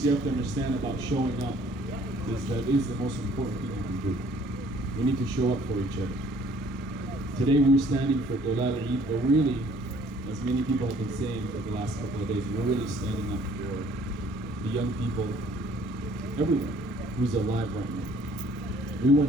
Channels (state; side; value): normal; both; correlation 0.58